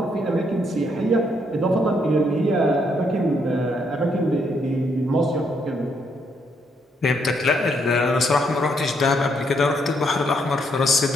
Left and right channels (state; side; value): normal; both; correlation 0.73